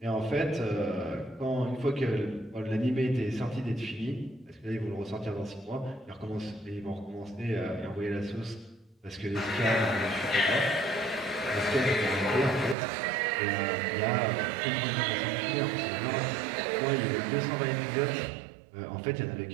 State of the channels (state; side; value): drops out; left; at 12.8 s